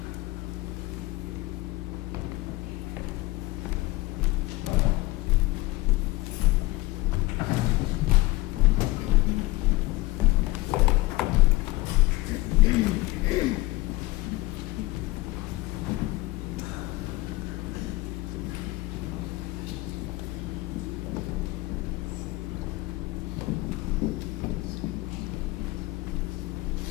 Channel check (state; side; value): quieter; right; 20.6 dB